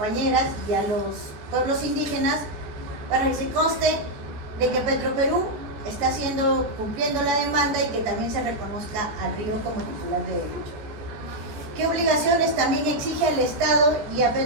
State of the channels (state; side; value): late; left; 14 ms